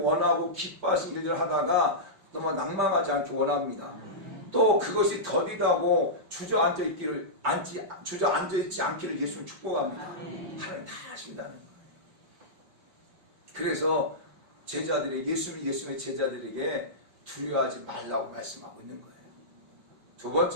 원하고 기뻐하신 일을 하다가 정말 낭망하지 않기 원합니다. 또 그것이 더디다고 주저앉아 있지 않기를 예수님 축복합니다. 하나님 다 하신다는 거예요. 그래서 예수님의 제자들에게 두려워하지 말라고 말씀하고 있는 거예요. 두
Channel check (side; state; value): left; late; 5.1 ms